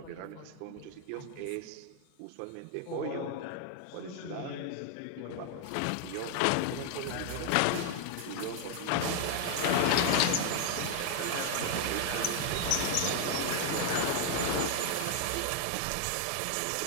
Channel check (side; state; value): both; different; correlation 0.00